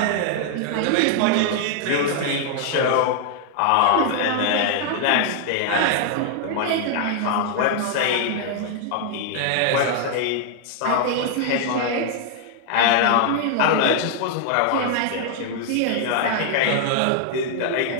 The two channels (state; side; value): different; both; correlation 0.00